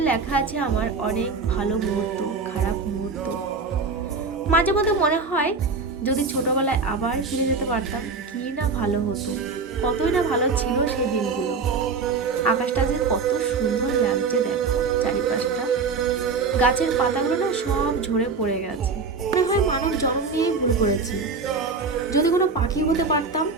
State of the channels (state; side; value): quieter; left; 4.5 dB